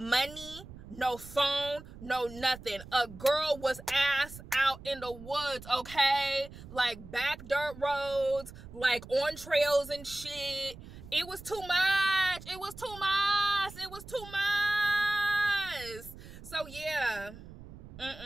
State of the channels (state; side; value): noise; right; rumble, 16 dB below the sound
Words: no phone, no nothing. A girl was ass out in the woods, okay? Like, back dirt roads, like, on trails and shit. It was too much. It was too much. It was too much. So, yeah.